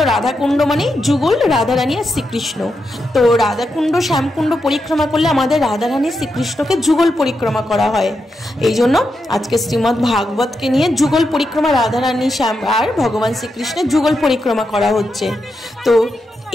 রাধাকুণ্ড মানেই যুগল রাধারানী আর শ্রীকৃষ্ণ। তো রাধাকুণ্ড শ্যামকুণ্ড পরিক্রমা করলে আমাদের রাধারানী শ্রীকৃষ্ণকে যুগল পরিক্রমা করা হয়। এই জন্য আজকে শ্রীমদ্ ভাগবতকে নিয়ে যুগল পরিক্রমা, রাধারানী শ্যাম আর ভগবান শ্রীকৃষ্ণের যুগল পরিক্রমা করা হচ্ছে। তো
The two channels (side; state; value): both; normal; correlation 0.85